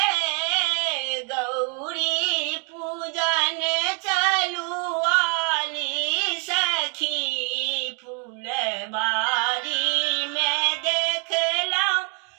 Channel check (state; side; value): quieter; left; 37.2 dB